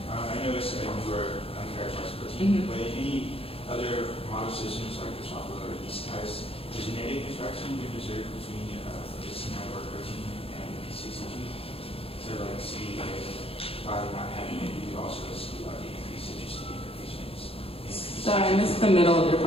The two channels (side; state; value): right; late; 0.27 ms